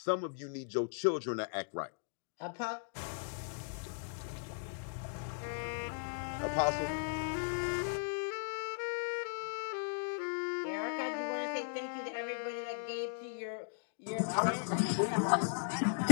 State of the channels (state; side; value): silent; right; digital silence